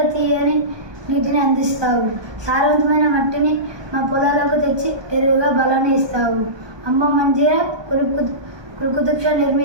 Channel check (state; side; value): late; left; 1.2 ms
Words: తీయని నీటిని అందిస్తావు. సారవంతమైన మట్టిని మా పొలాలకు తెచ్చి ఎరువుగా బలాన్ని ఇస్తావు. అమ్మ మంజీరా, కుతుబ్ షా